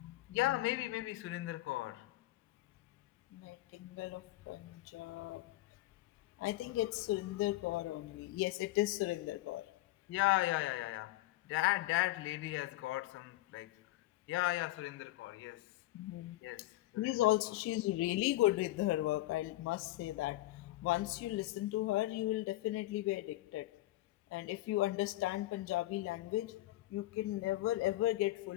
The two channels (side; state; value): right; quieter; 16.8 dB